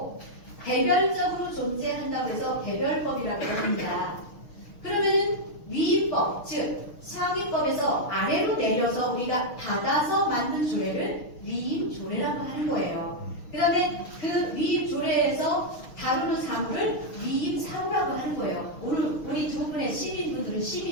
개별적으로 존재한다고 해서 개별법이라고 합니다. 그러면은 위임법, 즉 상위법에서 아래로 내려서 우리가 받아서 만든 조례를 위임조례라고 하는 거예요. 그 다음에 그 위임조례에서 다루는 사무를 위임사무라고 하는 거예요. 오늘 우리 두 분의 시민분들은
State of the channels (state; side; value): late; right; 6.4 ms